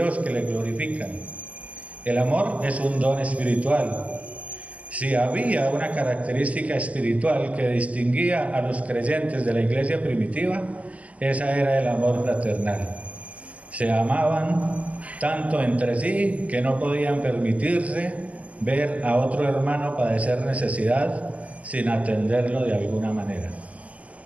que le glorifican. El amor es un don espiritual. Si había una característica espiritual que distinguía a los creyentes de la iglesia primitiva, esa era el amor fraternal. Se amaban tanto entre sí que no podían permitirse ver a otro hermano padecer necesidad sin atenderlo de alguna manera.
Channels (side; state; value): left; late; 0.071 ms